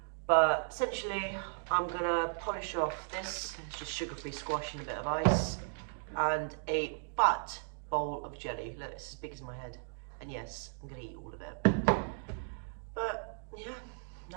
But essentially, I'm gonna polish off this. It's just sugar-free squash and a bit of ice, and a fat bowl of jelly. Look, it's as big as my head. And yes, I'm gonna eat all of it. But yeah,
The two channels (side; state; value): left; silent; digital silence